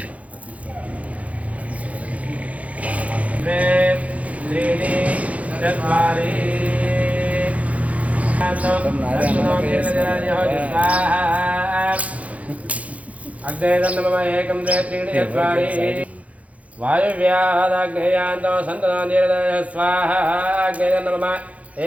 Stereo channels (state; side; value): late; left; 0.067 ms